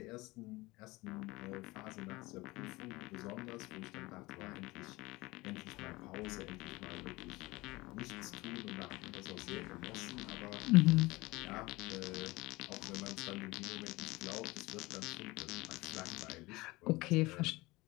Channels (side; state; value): right; quieter; 21.5 dB